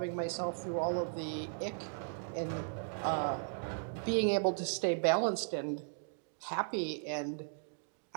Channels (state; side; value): silent; left; digital silence